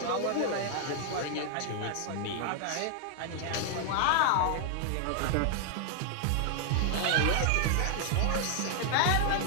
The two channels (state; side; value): different; both; correlation 0.00